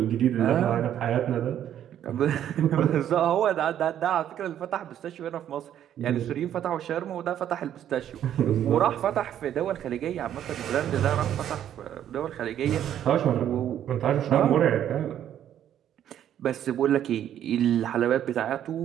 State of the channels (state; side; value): quieter; left; 10.6 dB